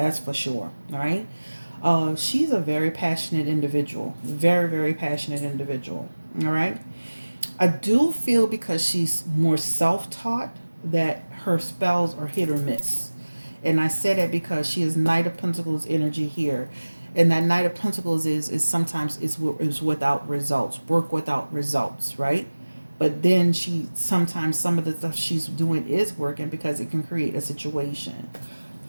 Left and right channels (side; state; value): both; inverted; correlation -1.00